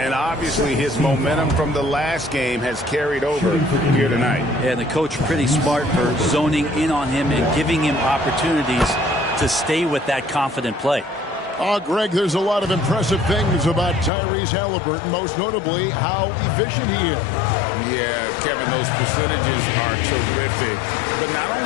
obviously his momentum from the last game has carried over here tonight. Yeah, and the coach pretty smart for zoning in on him and giving him opportunities to stay with that confident play. Greg, there's a lot of impressive things about Tyrese Halliburton, most notably how efficient he is. Yeah, Kevin, those percentages are terrific. But not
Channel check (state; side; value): drops out; right; at 14.1 s